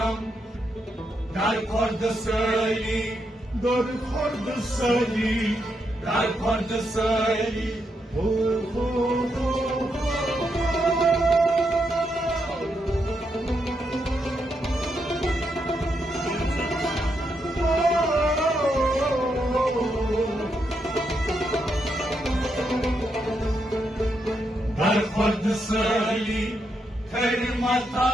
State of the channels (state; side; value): normal; both; correlation 0.81